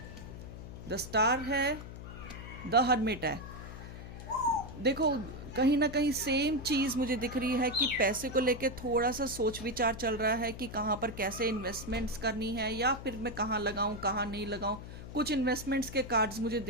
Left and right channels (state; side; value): noise; left; hum, 11 dB below the sound